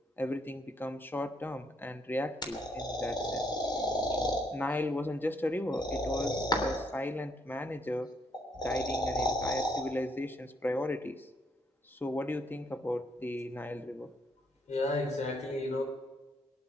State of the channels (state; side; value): normal; both; correlation 0.72